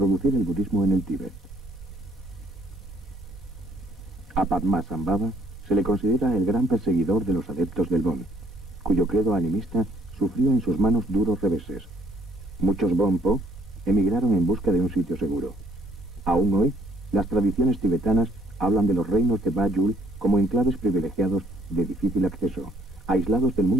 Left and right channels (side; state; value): both; normal; correlation 0.64